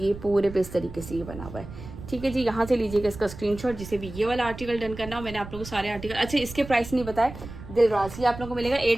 पूरे पे इस तरीके से ये बना हुआ है। ठीक है जी, यहाँ से लीजिएगा इसका स्क्रीनशॉट जिसे भी ये वाला आर्टिकल डन करना हो। मैंने आप लोगों को सारे आर्टिकल, अच्छा इसके प्राइस नहीं बताए, दिलराज ये आप लोगों को मिलेगा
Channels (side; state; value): right; noise; rumble, 13 dB below the sound